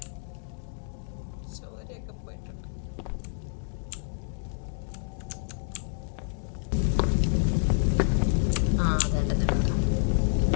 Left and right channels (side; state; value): right; silent; digital silence